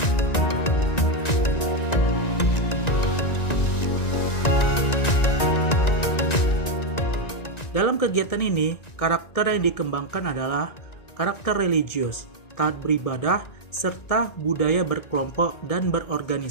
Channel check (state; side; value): late; right; 1.9 ms